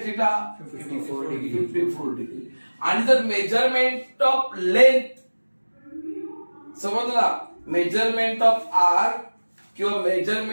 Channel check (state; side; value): inverted; both; correlation -1.00